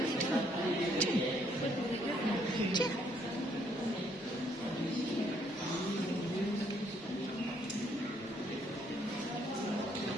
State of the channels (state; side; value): normal; both; correlation 0.69